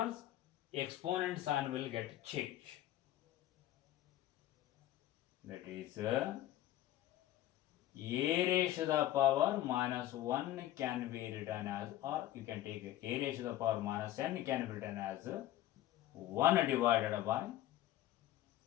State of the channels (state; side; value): quieter; right; 13.7 dB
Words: Exponent sign will get changed. That is a raised to the power minus 1 can be written as, or you can take a raised to the power minus n can be written as 1 divided by